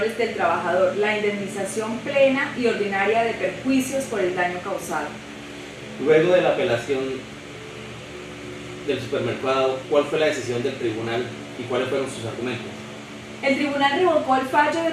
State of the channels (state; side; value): identical; both; correlation 1.00